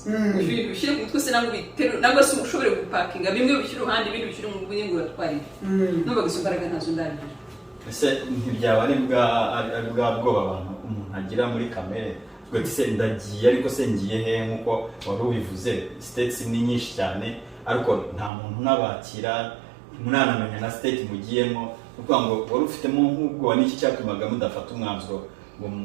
ibintu bishyire ku mutwe se nangwa biterure nangwa se ushobore gupakinga bimwe bishyira uruhande ibindi bishyira mu bwenge uratwarira numvaga izo mbaraga ntazo ndagira ese ntibyaba ari bwa bwoba abantu umuntu agira muri kamere ubwo se ndagiye ariko se ngiye he nk'uko wari ubivuze states ni nyinshi cyane ariko nta muntu nabakira munanamenya na state mugiyemo kuko ngo wari ufitemo nk'ubwo n'iki cyatumaga mudafata umwanzuro ngo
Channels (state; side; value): drops out; left; at 18.3 s